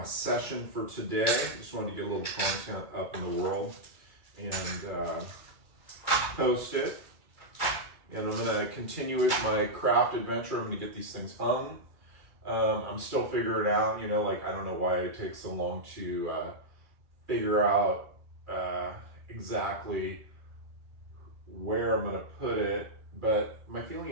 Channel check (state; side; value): late; left; 2.3 ms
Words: session for today. Just wanted to get a little content up in the world and post it. And I'm gonna continue with my craft adventure. I'm gonna get these things hung. I'm still figuring out, like, I don't know why it takes so long to figure out exactly where I'm gonna put it, but my feeling